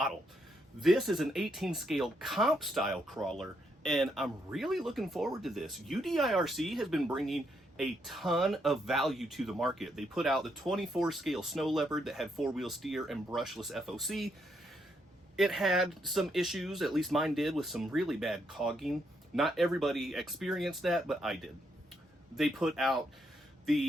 This is an 18 scale comp style crawler, and I'm really looking forward to this. UDIRC has been bringing a ton of value to the market. They put out the 24 scale Snow Leopard that had 4-wheel steer and brushless FOC. It had some issues, at least mine did, with some really bad cogging. Not everybody experienced that, but I did. They put out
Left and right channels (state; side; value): normal; both; correlation 0.77